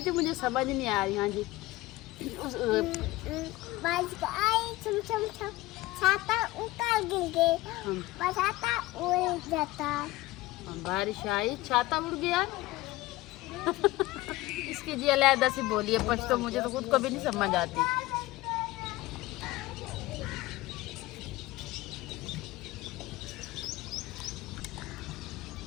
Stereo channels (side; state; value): right; quieter; 18.8 dB